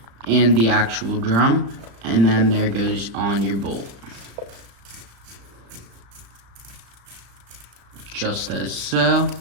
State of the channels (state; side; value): late; left; 35 ms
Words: and the actual drum, and then there goes on your bolt. Just as so.